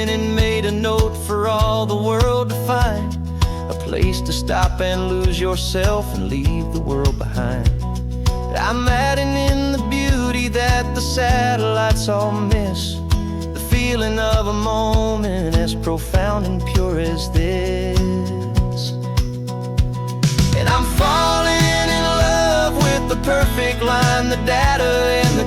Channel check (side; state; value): both; identical; correlation 1.00